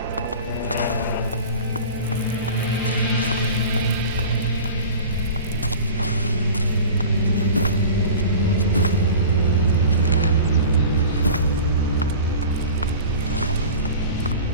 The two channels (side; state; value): both; inverted; correlation -0.38